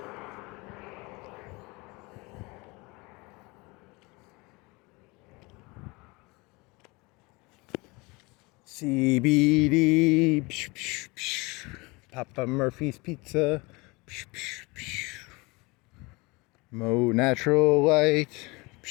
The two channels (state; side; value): quieter; right; 25.3 dB